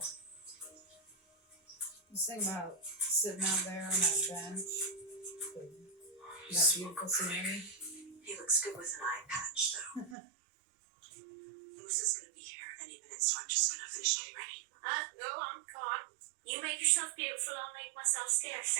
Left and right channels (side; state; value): left; drops out; at 10.2 s